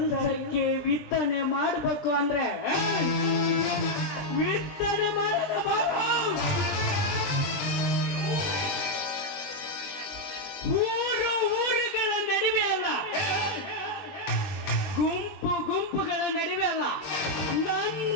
ವಿತ್ತನೆ ಮಾಡ್ಬೇಕು ಅಂದ್ರೆ ವಿತ್ತನೆ ಮಾಡೋಣ ಬಾರೋ. ಊರುಗಳ ನಡುವೆ ಅಲ್ಲ, ಗುಂಪುಗಳ ನಡುವೆ ಅಲ್ಲ,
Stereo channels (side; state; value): right; late; 20 ms